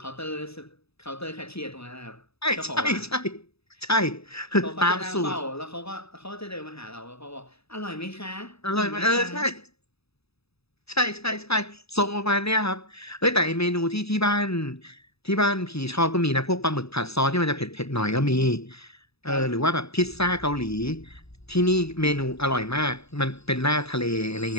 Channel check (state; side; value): late; right; 0.78 ms